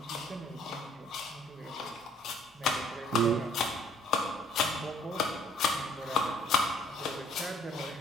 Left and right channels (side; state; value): both; normal; correlation 0.60